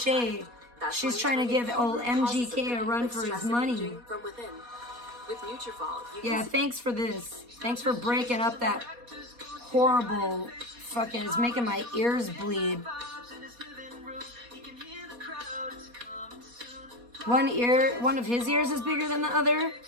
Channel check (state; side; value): late; left; 4.2 ms